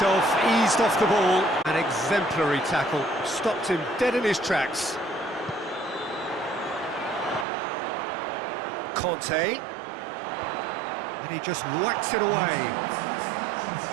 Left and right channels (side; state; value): left; drops out; at 7.5 s